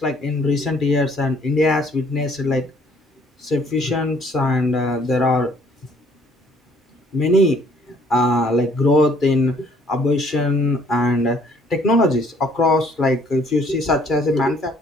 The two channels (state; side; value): normal; both; correlation 0.61